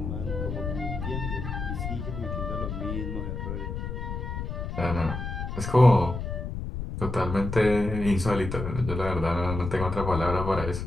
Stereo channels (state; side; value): noise; left; rumble, 5 dB below the sound